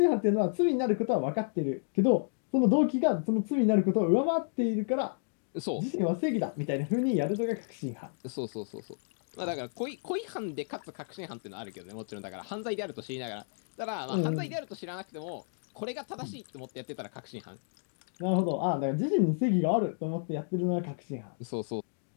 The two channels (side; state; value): right; silent; digital silence